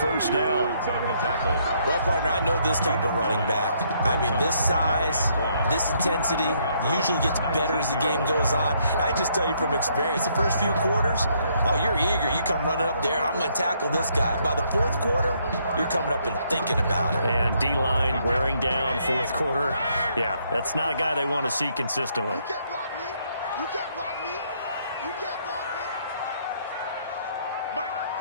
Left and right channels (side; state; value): both; inverted; correlation -0.70